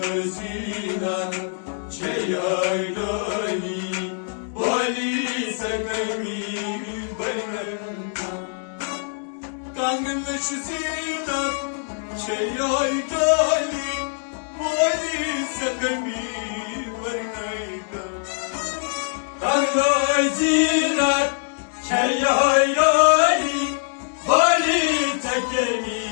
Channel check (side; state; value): right; silent; 63 dB below the other